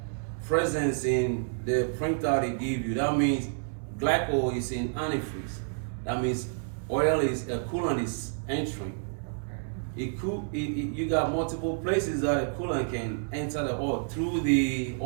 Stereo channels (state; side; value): silent; left; 58 dB below the other